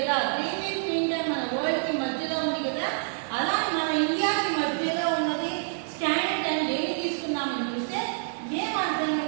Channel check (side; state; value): left; silent; digital silence